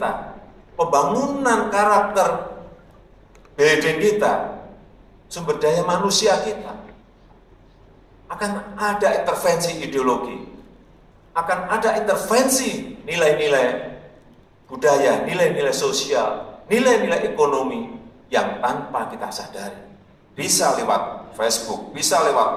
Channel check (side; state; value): both; identical; correlation 1.00